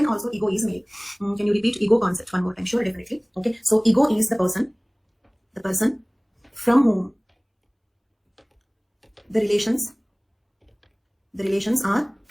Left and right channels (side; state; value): both; identical; correlation 1.00